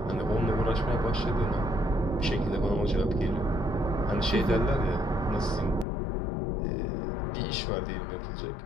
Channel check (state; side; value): drops out; right; at 5.9 s